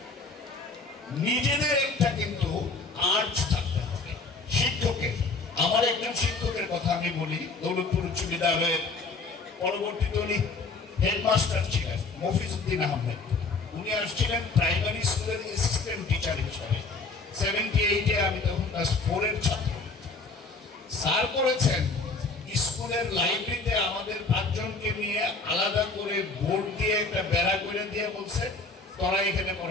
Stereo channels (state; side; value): quieter; right; 3.8 dB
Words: নিজেদের একটা কিন্তু আর্জ থাকতে হবে শিক্ষকের। আমার একজন শিক্ষকের কথা আমি বলি, দৌলতপুর উচ্চ বিদ্যালয়ের পরবর্তীতে উনি হেডমাস্টার ছিলেন, মফিজউদ্দিন আহমেদ। উনি আসছিলেন প্রাইমারি স্কুলের অ্যাসিস্ট্যান্ট টিচার হিসাবে। 78-এ আমি তখন ক্লাস 4-এর ছাত্র। স্যার করেছেন স্কুলের লাইব্রেরিতে আমাদের 5 জনকে নিয়ে আলাদা করে বোর্ড দিয়ে একটা বেড়া করে দিয়ে বলছে তোরা এখানে